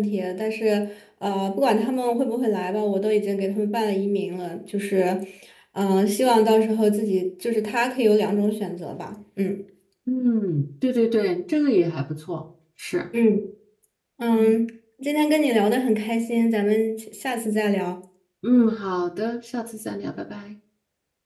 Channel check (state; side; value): identical; both; correlation 1.00